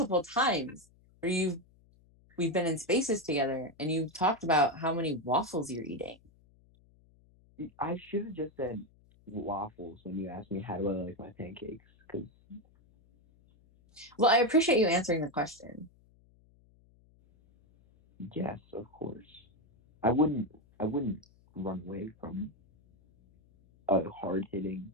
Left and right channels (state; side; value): noise; left; hum, 30 dB below the sound